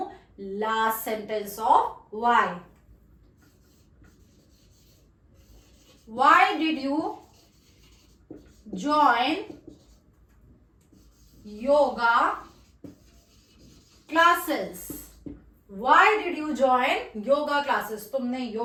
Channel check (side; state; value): both; identical; correlation 1.00